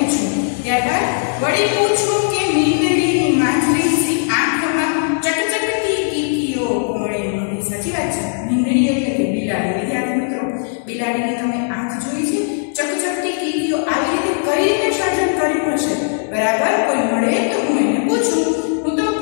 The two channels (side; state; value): right; silent; digital silence